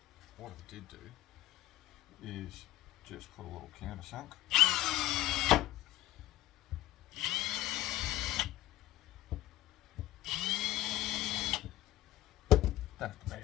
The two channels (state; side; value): quieter; right; 15.4 dB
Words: what I did do is just put a little countersunk. Don't have to